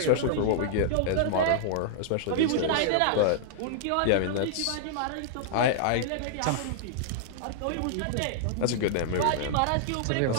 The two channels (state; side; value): different; both; correlation -0.01